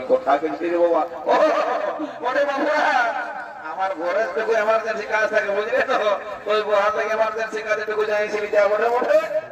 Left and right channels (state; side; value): identical; both; correlation 1.00